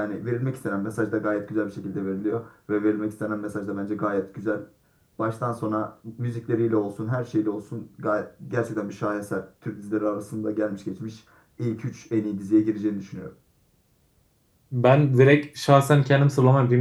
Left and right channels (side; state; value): both; identical; correlation 1.00